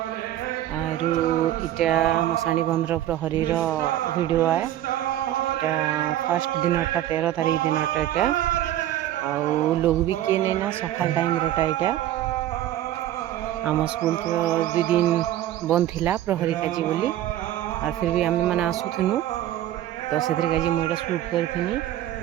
आरु इटा मसाणी बंधर प्रहरीर वीडियो आए। इटा फर्स्ट दिनटा 13 तारीख दिनटा इटा आउ लोग भी किए नहीं ना सकाल टाइम रोटा इटा आम स्कूल तो 2 दिन बंद थिला प्रहरी काजी बोली और फिर भी आम मैंने आसुथनु तो से काजी मुझे शूट करी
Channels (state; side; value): quieter; left; 12.9 dB